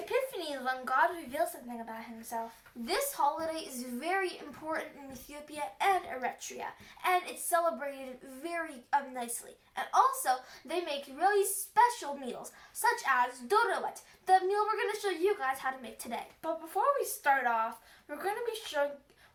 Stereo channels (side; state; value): both; identical; correlation 1.00